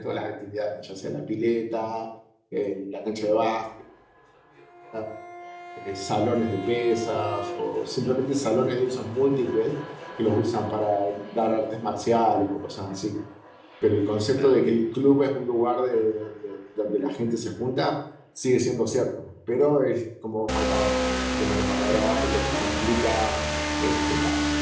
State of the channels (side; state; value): both; identical; correlation 1.00